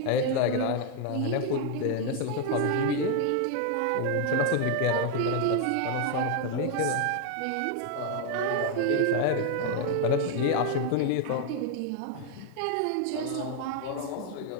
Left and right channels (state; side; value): different; both; correlation 0.00